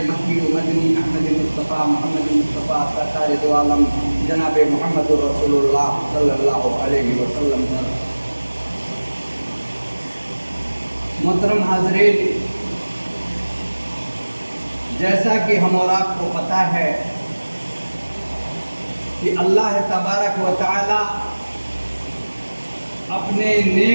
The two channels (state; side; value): inverted; both; correlation -1.00